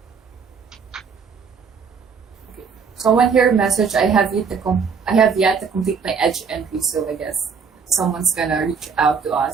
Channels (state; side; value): quieter; left; 5.8 dB